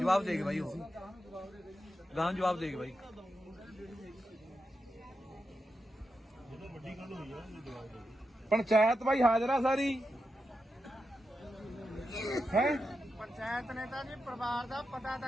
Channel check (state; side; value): normal; both; correlation 0.88